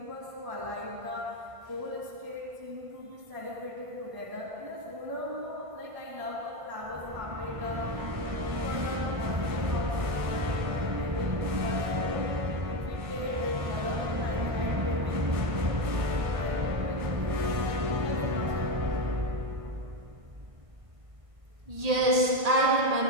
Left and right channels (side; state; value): left; late; 1.5 ms